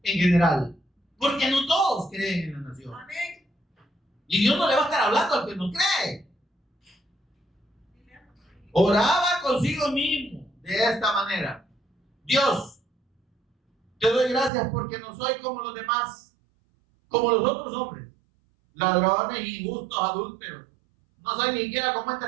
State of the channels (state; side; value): drops out; left; at 14.5 s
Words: en general, porque no todos creen en la nación. Y Dios no le va a estar hablando al que no cree. Oraba consigo mismo de esta manera: Dios, te doy gracias porque no soy como los demás, como los otros hombres, ladrones, injustos, adúlteros. No soy ni siquiera como